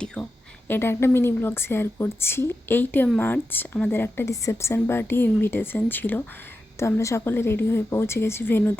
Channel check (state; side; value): normal; both; correlation 0.90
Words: এটা একটা মিনি ব্লগ শেয়ার করছি। 8 মার্চ আমাদের একটা রিসেপশন পার্টি ইনভিটেশন ছিল। তো আমরা সকলে রেডি হয়ে পৌঁছে গেছি